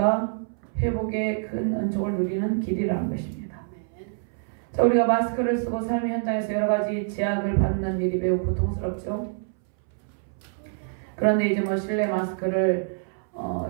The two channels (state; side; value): silent; left; 61 dB below the other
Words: 회복의 큰 은총을 누리는 길이라는 것입니다. 자, 우리가 마스크를 쓰고 삶의 현장에서 여러 가지 제약을 받는 일이 매우 고통스럽죠. 그런데 이제 실내 마스크를